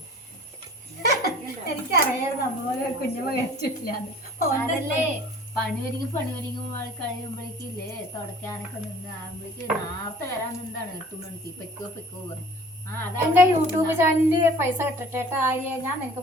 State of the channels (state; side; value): normal; both; correlation 0.48